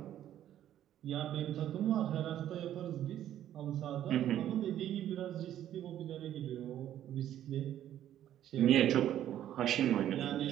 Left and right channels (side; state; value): left; quieter; 11.6 dB